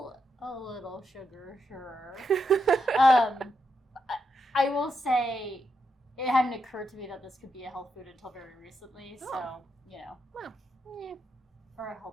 A little sugar, sure. I will say it hadn't occurred to me that this could be a health food until very recently, so, you know. Well, yeah. Or a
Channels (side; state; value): both; normal; correlation 0.83